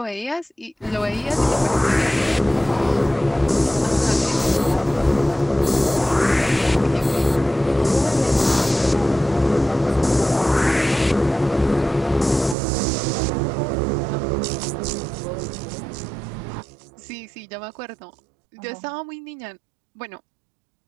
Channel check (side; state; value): left; drops out; at 12.6 s